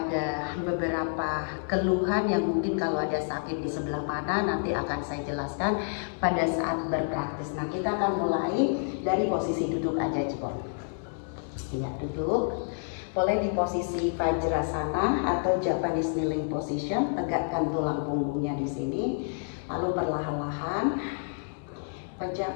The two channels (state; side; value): silent; right; 59 dB below the other